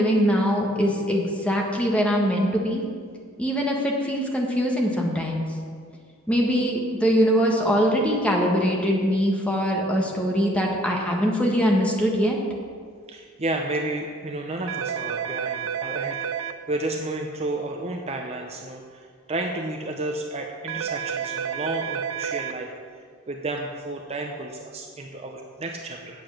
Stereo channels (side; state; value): both; normal; correlation 0.57